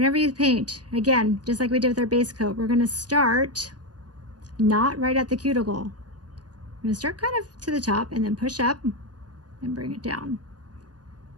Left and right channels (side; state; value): left; late; 0.69 ms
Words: you paint, again, just like we did with our base coat, we're going to start not right at the cuticle. I'm going to start kind of to the top and then push up and bring it down.